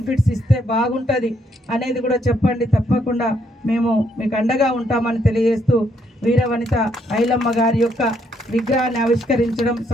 ఇస్తే బాగుంటుంది అనేది కూడా చెప్పండి. తప్పకుండా మేము మీకు అండగా ఉంటామని తెలియజేస్తూ వీరవనిత ఐలమ్మ గారి యొక్క విగ్రహాన్ని ఆవిష్కరించడం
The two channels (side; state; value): both; normal; correlation 0.73